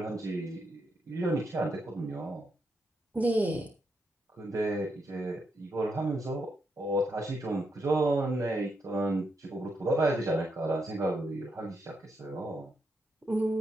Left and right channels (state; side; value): normal; both; correlation 0.81